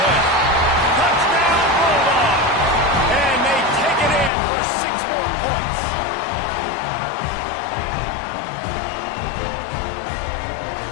Touchdown, Bulldog. And they take it in for 6 more points.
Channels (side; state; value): right; drops out; at 4.3 s